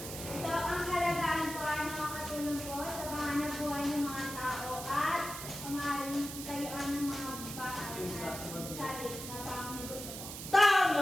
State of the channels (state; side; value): noise; right; hiss, 8 dB below the sound